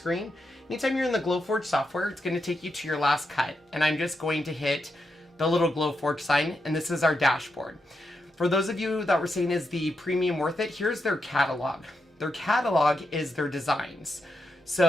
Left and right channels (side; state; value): both; normal; correlation 0.84